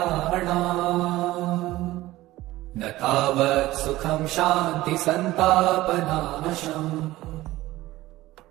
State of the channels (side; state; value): left; quieter; 17.1 dB